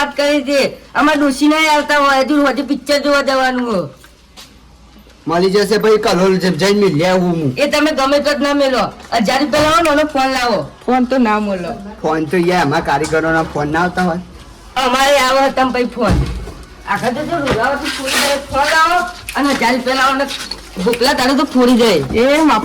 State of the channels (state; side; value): identical; both; correlation 1.00